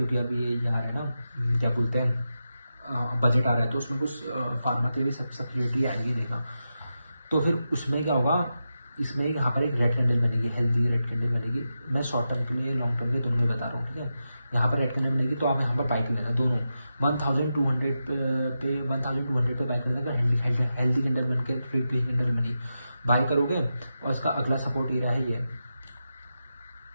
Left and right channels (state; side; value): inverted; both; correlation -0.89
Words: अभी ये आ रहा है ना, क्या बोलते हैं, बजट आ रहा है, तो उसमें कुछ फार्मा के लिए सब्सिडी आएगी देना, तो फिर उसमें क्या होगा, इसमें यहाँ पर एक रेड कैंडल बनेगी, हेल्दी रेड कैंडल बनेगी। मैं शॉर्ट टर्म के लिए लॉन्ग टर्म के दोनों में बता रहा हूँ, ठीक है। यहाँ पर रेड कैंडल बनेगी तो आप यहाँ पर बाइक लेना, दोनों 1200 पे 1200 पे बाइक लेना। अगर हेल्दी कैंडल बन के फिर ग्रीन कैंडल बनी, बाई करोगे और उसका अगला सपोर्ट एरिया है